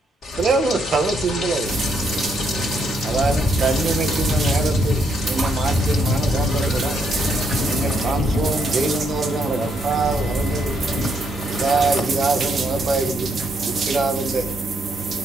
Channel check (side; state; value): both; normal; correlation 0.74